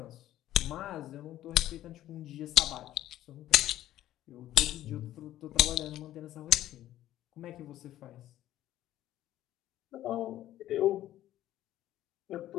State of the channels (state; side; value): quieter; right; 13.5 dB